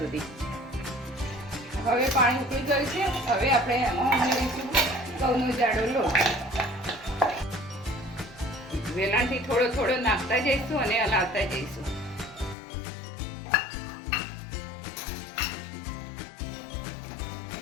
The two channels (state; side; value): drops out; right; at 12.6 s